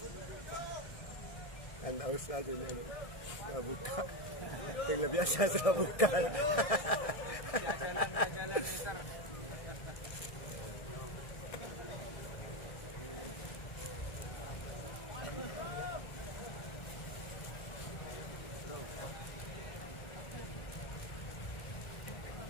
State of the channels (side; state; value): right; late; 1.6 ms